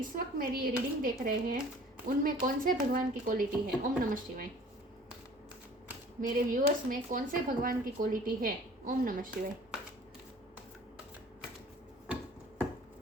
वक्त मेरी ये रीडिंग देख रहे हैं उनमें कौन से भगवान की क्वालिटी है। ओम नमः शिवाय। मेरे व्यूअर्स में कौन से भगवान की क्वालिटी है। ओम नमः शिवाय।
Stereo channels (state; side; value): normal; both; correlation 0.49